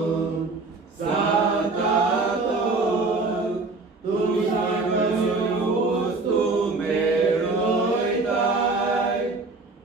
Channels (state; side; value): quieter; left; 3.6 dB